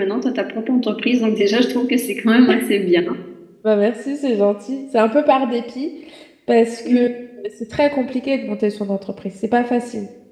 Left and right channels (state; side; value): identical; both; correlation 1.00